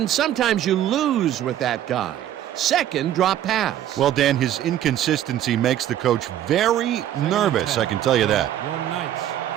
sometimes you lose with that guy. Second drop pass. Well, Dan, his inconsistency makes the coach very nervous, I can tell you that. Your Knights,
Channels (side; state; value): left; quieter; 11.7 dB